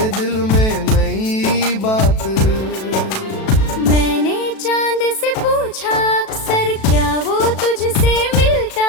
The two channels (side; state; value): right; late; 37 ms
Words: दिल में नई बात। मैंने चांद से पूछा अक्सर, क्या वो तुझसे मिलता